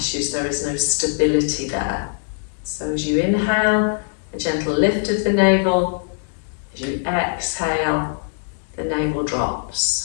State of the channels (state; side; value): silent; right; digital silence